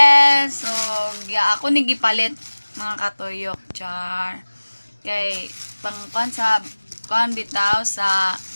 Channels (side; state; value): both; inverted; correlation -1.00